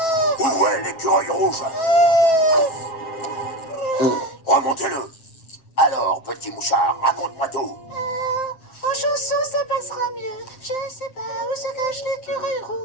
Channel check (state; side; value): late; right; 7.6 ms